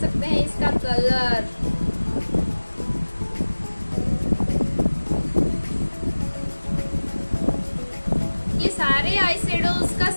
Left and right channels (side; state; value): both; inverted; correlation -1.00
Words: हैं इसका कलर। ये सारे आई शेडोज का